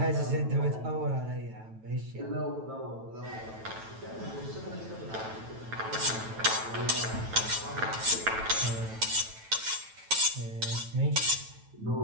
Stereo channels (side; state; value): left; late; 9.1 ms